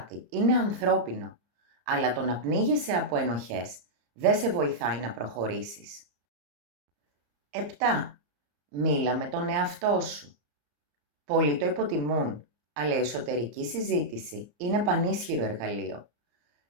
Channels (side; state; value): left; late; 34 ms